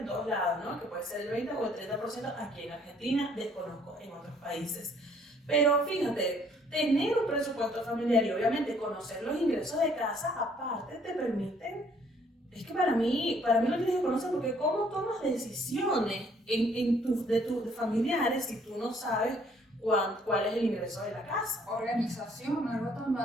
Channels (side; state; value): both; normal; correlation 0.62